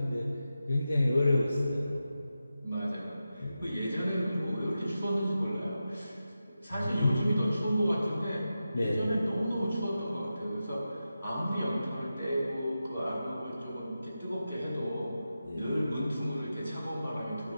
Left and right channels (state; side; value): inverted; both; correlation -0.91